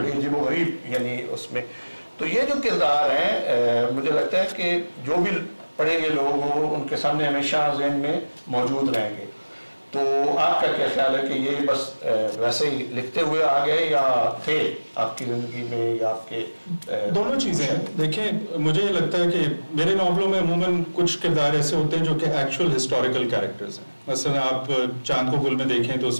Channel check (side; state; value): both; inverted; correlation -1.00